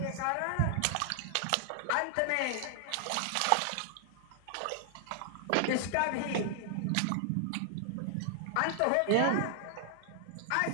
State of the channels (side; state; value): both; different; correlation 0.00